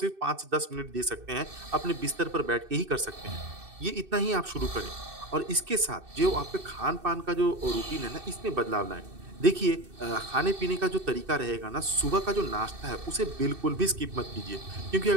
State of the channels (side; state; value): left; late; 2.6 ms